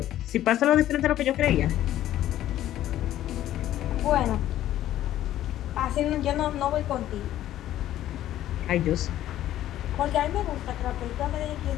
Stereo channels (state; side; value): quieter; right; 13.0 dB